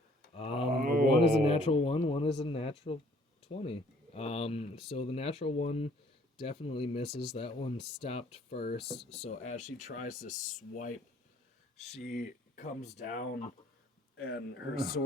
One is a natural 1, one is a natural 20. So the natural 1 definitely misses. That one stopped first. So as she tries to swipe, she comes down and her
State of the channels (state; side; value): normal; both; correlation 0.60